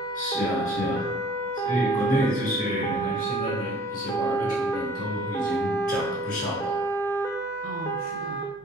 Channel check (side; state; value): left; noise; hum, 28 dB below the sound